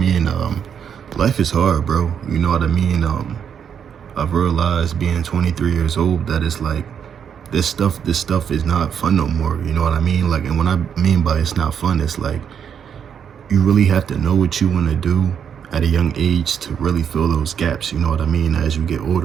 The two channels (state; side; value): quieter; left; 7.9 dB